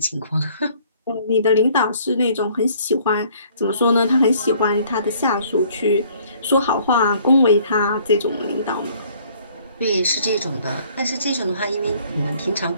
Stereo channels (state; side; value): inverted; both; correlation -0.59